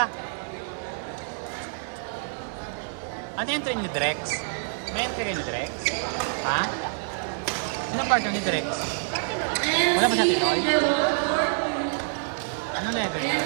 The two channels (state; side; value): silent; left; digital silence